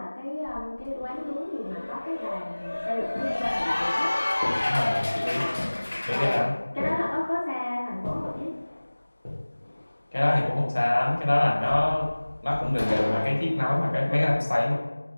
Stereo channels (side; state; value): both; inverted; correlation -1.00